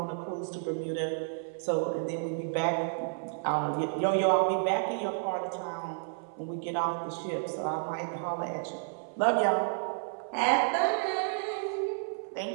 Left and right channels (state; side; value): silent; left; 57 dB below the other